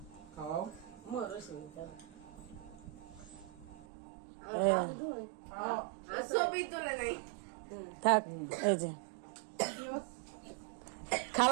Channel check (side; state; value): left; drops out; at 3.8 s